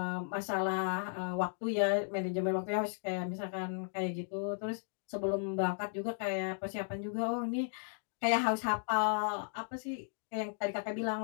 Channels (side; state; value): right; silent; 54 dB below the other